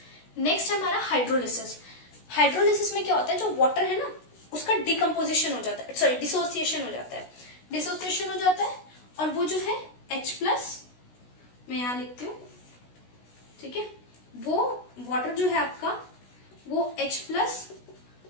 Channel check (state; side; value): late; right; 16 ms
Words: नेक्स्ट है हमारा हाइड्रोलिसिस। हाइड्रोलिसिस में क्या होता है, जो वाटर है ना उसका डिकम्पोजिशन हो जाता है, सॉरी डिसोसिएशन हो जाता है, डिसोसिएशन हो जाता है, और वो जो है H+, मैं यहां लिखती हूँ, ठीक है, वो वाटर जो है आपका वो H+